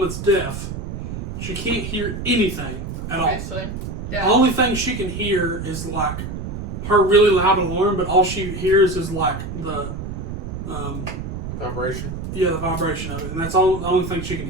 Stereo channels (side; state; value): right; noise; rumble, 6 dB below the sound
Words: deaf. She can't hear anything at all. Obviously. The Yeah. only thing she can hear is like her really loud alarm, but all she hears is like the, Vibration. the vibration of it. And that's all the only thing she can